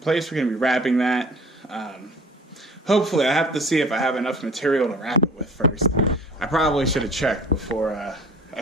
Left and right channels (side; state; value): both; normal; correlation 0.47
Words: We're going to be wrapping that. Hopefully, I have to see if I have enough material to wrap it with first. I probably should have checked before I